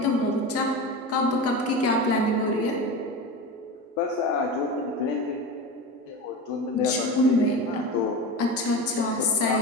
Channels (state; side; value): normal; both; correlation 0.26